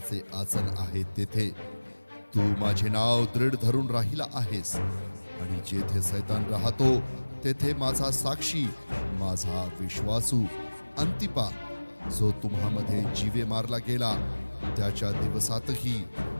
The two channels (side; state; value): both; inverted; correlation -1.00